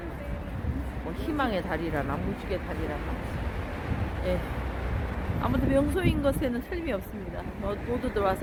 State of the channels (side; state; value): both; identical; correlation 1.00